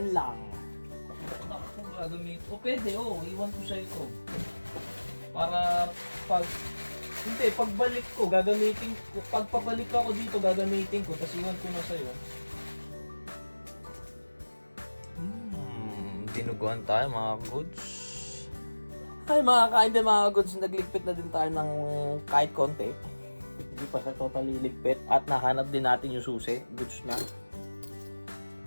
lang. Gagamit. O pwede, iwan ko siya ito. Para pagbalik ko, gagamitin ko. Pagpabalik ako dito, gagamitin ko. Tapos iwan ko na sa'yo. Dinuguan tayo mga goods. Ay mga kain din mga goods, nagligpit na din tayo ng kahit konti. Hindi pa siya totally ligpit. At nahanap din natin yung susi. Goods na.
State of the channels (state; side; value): inverted; both; correlation -1.00